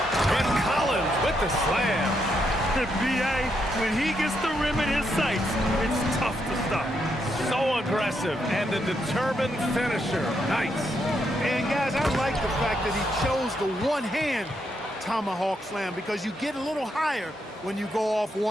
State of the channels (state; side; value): normal; both; correlation 0.79